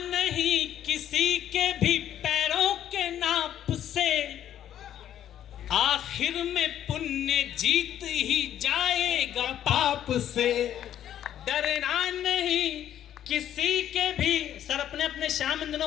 किसी के भी पैरों के नाप से, आखिर में पुण्य जीत ही जाएगा पाप से। डरना नहीं किसी के भी। सर अपने अपने श्याम इन दिनों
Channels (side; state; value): right; quieter; 10.9 dB